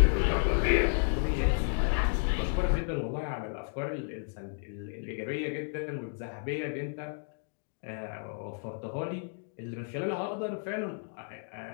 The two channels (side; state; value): right; silent; digital silence